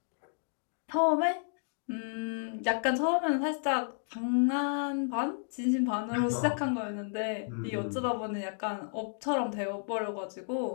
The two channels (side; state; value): right; silent; digital silence